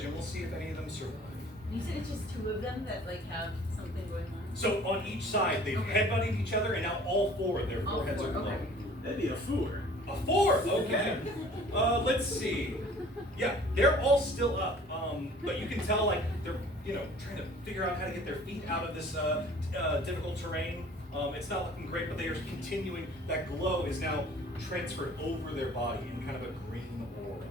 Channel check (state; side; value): normal; both; correlation 0.50